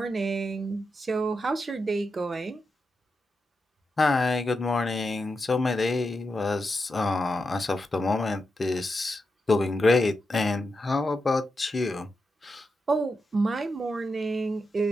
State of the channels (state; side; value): normal; both; correlation 0.87